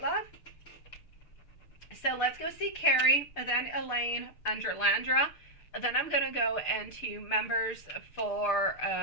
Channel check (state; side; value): late; right; 6.8 ms